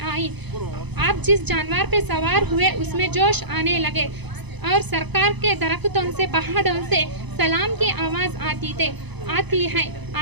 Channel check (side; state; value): left; late; 0.99 ms